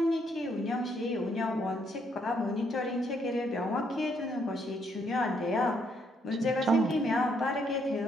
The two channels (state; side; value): normal; both; correlation 0.72